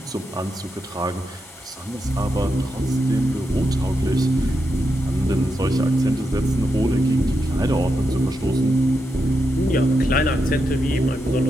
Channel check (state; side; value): normal; both; correlation 0.85